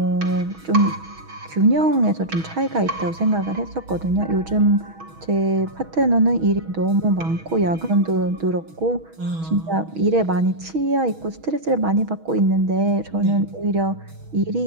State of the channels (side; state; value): left; late; 6.2 ms